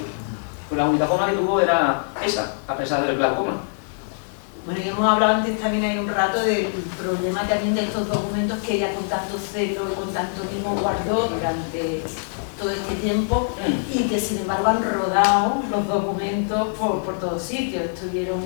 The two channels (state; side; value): silent; right; digital silence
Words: Pues la única forma que tuvo era esa, a pesar del glaucoma. Bueno, y hemos hablado antes también hay un rato del problema también de estos documentos que ella con tanto celo y con tanto mimo guardó durante todo este tiempo y que sin embargo han rodado los documentos por todos sitios. Estuvieron